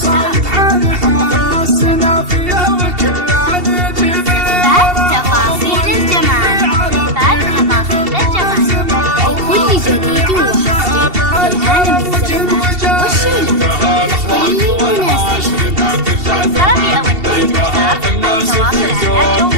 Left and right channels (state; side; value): late; left; 2.7 ms